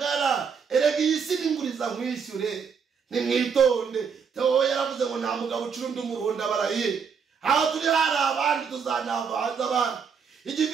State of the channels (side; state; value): left; quieter; 6.3 dB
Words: erega iyi si n'inguriza nkwishyure nimwitonde Theo yaravuze ngo nta mugabo ucurundi umuruhunda barahiye aho turi hari abandi tuzanavanza abandi